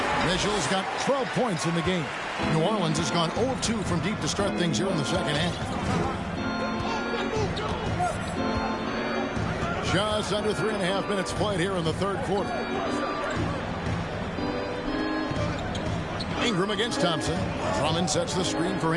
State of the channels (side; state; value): both; identical; correlation 1.00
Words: Mitchell's got 12 points in the game. New Orleans has gone 0 of 2 from deep to start things here in the second half. Just under 3.5 minutes played here in the third quarter. Ingram against Thompson. Drummond sets the screen for